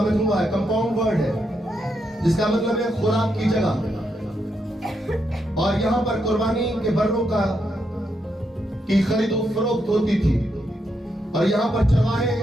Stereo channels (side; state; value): both; normal; correlation 0.81